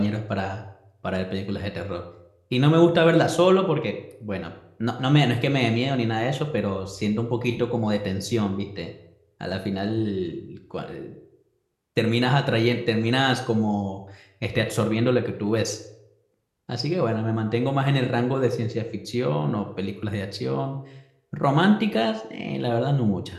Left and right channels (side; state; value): both; identical; correlation 1.00